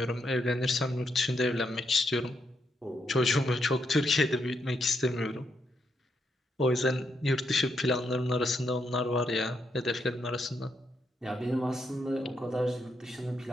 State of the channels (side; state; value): both; normal; correlation 0.79